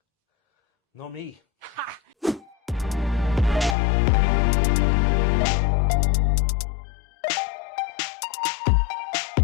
Nor me. Ha!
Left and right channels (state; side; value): drops out; right; at 3.8 s